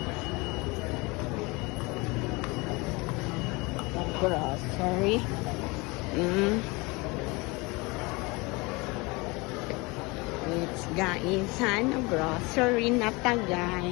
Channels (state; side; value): quieter; right; 25.6 dB